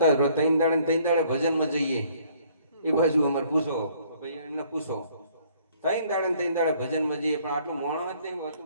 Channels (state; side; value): inverted; both; correlation -0.61